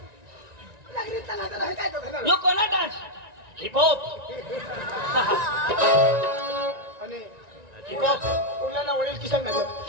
यो कोणा डान्स हिपहॉप आणि हिपहॉप उरल्याला वडील किसन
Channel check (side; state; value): left; late; 1.9 ms